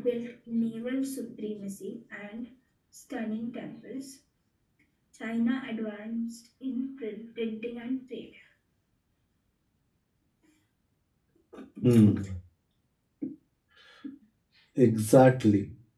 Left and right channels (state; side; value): identical; both; correlation 1.00